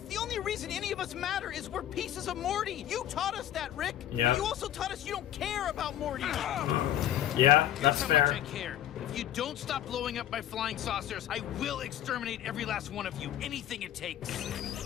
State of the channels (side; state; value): right; quieter; 12.0 dB